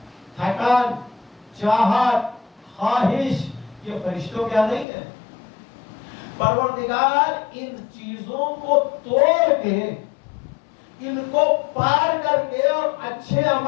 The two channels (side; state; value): right; drops out; at 4.9 s